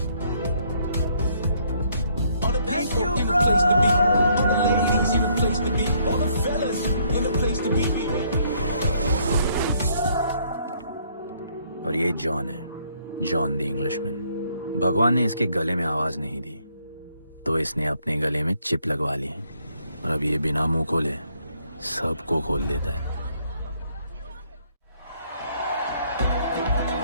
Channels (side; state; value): both; inverted; correlation -0.68